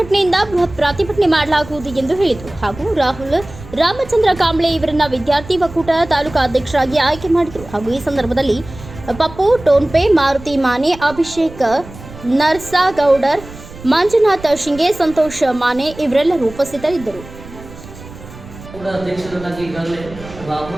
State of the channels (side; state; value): right; noise; rumble, 16 dB below the sound